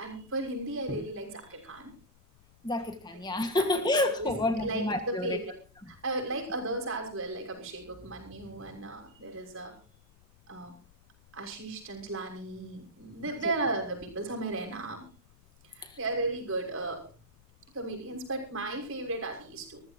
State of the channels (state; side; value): noise; left; rumble, 26 dB below the sound